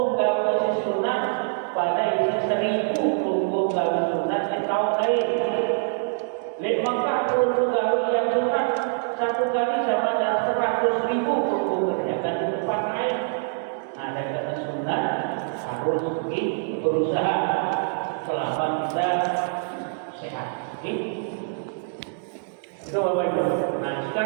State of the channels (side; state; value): left; silent; 62 dB below the other